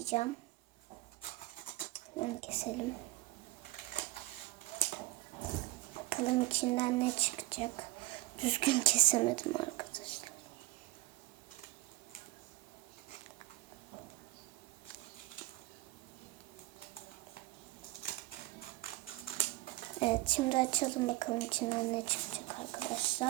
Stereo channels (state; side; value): quieter; left; 19.4 dB